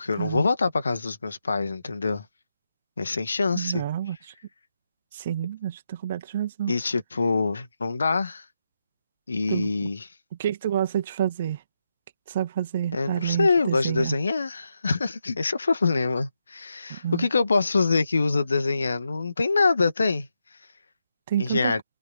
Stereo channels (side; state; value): both; inverted; correlation -0.84